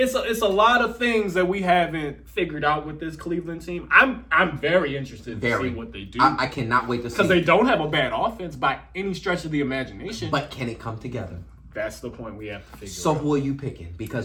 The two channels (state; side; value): identical; both; correlation 1.00